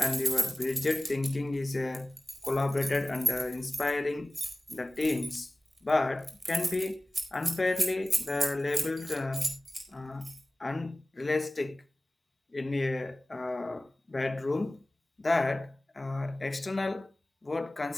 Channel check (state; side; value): normal; both; correlation 0.97